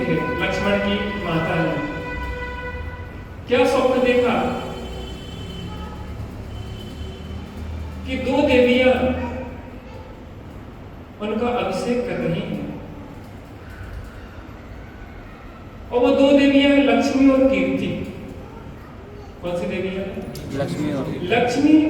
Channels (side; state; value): both; identical; correlation 1.00